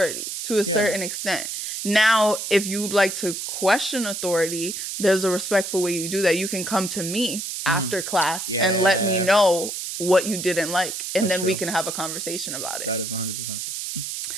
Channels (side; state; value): right; noise; hiss, 5 dB below the sound